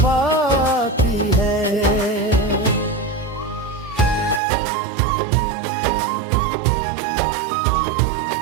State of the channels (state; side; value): drops out; left; at 4.4 s